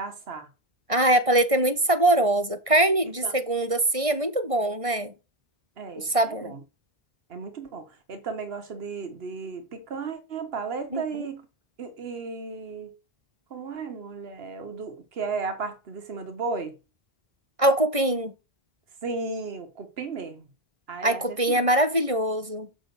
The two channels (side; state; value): left; late; 1.6 ms